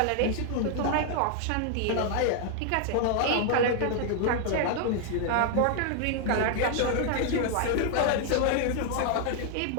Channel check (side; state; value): both; different; correlation 0.00